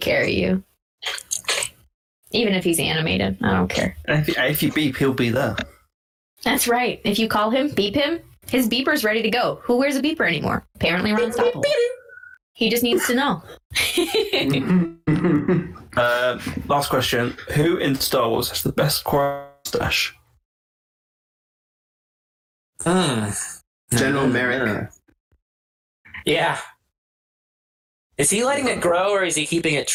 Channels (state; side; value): identical; both; correlation 1.00